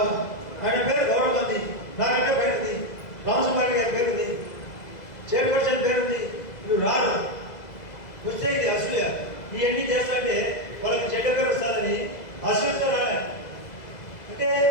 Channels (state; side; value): late; right; 2.0 ms